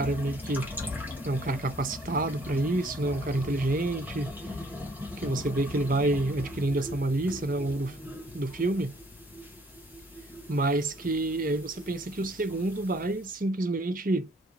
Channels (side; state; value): both; normal; correlation 0.62